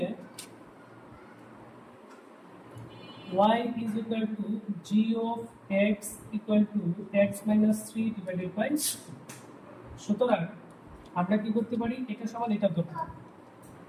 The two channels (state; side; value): identical; both; correlation 1.00